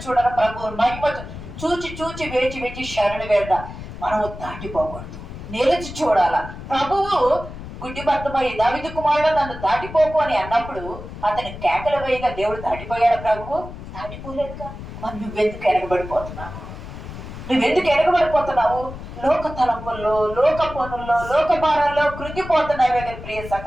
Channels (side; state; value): left; noise; rumble, 11 dB below the sound